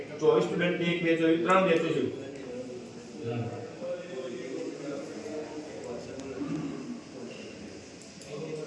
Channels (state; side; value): identical; both; correlation 1.00